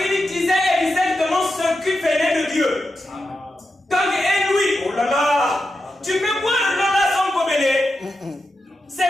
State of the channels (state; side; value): normal; both; correlation 0.88